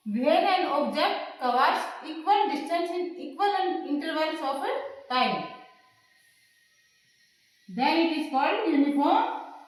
When an object covers equal distance in equal intervals of time, then it is called uniform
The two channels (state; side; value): identical; both; correlation 1.00